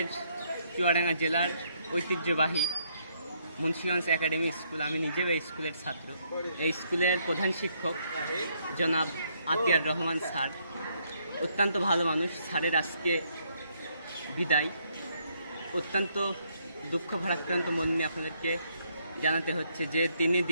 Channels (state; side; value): inverted; both; correlation -0.72